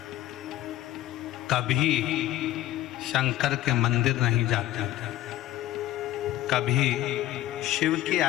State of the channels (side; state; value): right; quieter; 14.2 dB